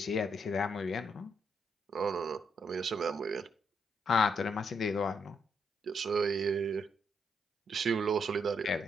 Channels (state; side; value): normal; both; correlation 0.77